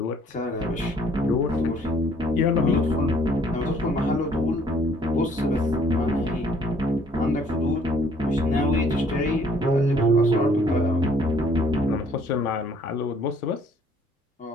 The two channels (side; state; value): both; normal; correlation 0.61